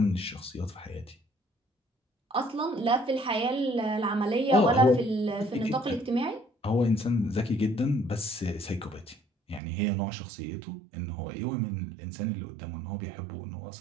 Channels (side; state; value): left; drops out; at 9.6 s